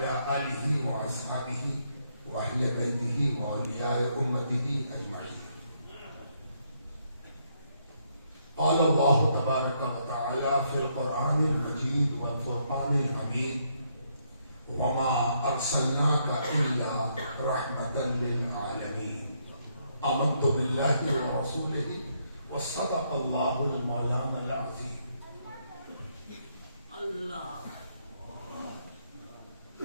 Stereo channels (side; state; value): both; inverted; correlation -0.74